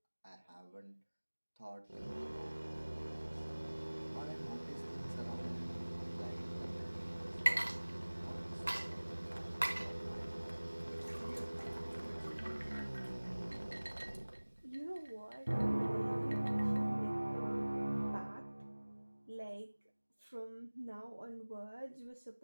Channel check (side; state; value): both; inverted; correlation -1.00